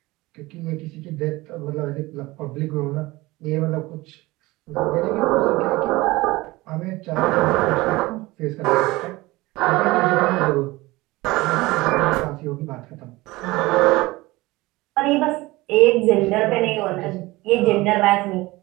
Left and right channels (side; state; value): left; quieter; 20.5 dB